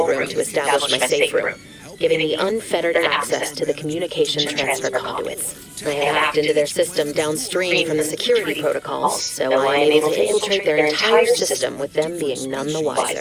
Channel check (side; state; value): both; identical; correlation 1.00